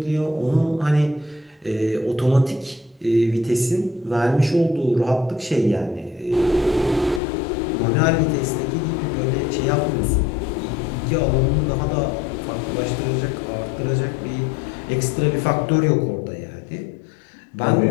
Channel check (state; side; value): drops out; right; at 7.2 s